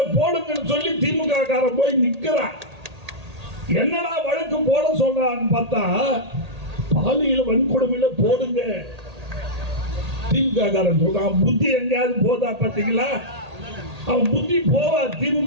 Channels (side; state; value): left; late; 1.8 ms